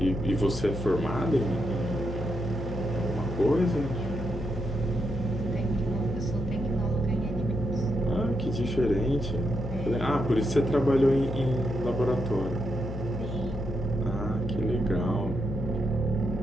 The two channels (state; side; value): noise; left; hum, 6 dB below the sound